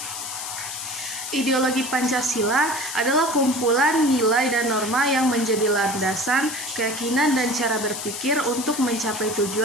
Ideologi Pancasila adalah kumpulan nilai dan norma yang menjadi landasan, keyakinan, dan cara berpikir untuk mencapai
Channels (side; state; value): left; noise; hiss, 7 dB below the sound